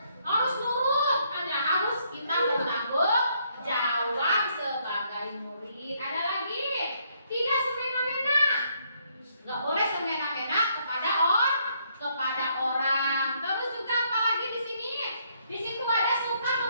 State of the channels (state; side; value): inverted; both; correlation -0.71